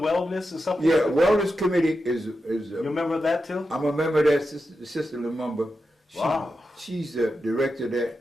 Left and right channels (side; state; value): both; normal; correlation 0.89